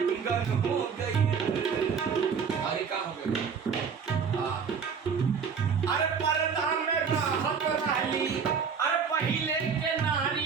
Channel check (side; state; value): left; quieter; 6.3 dB